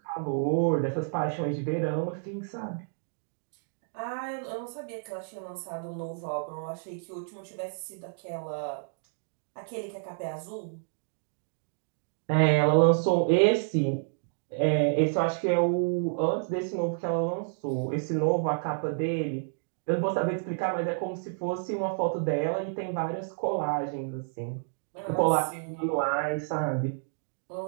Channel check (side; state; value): left; silent; digital silence